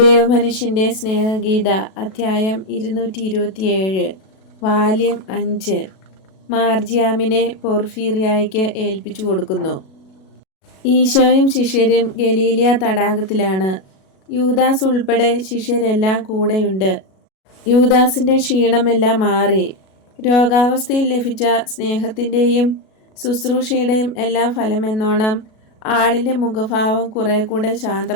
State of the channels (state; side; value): late; right; 37 ms